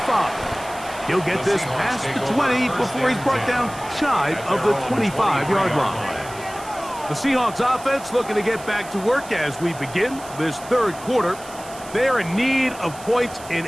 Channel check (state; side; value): noise; right; hiss, 17 dB below the sound